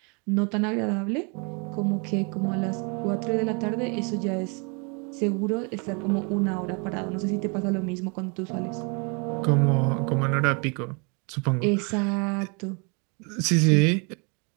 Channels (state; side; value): quieter; left; 33.7 dB